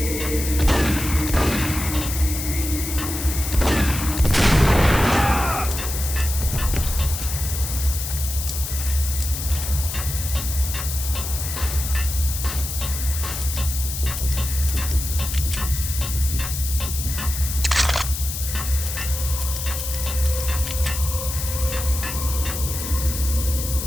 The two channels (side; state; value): left; noise; hiss, 6 dB below the sound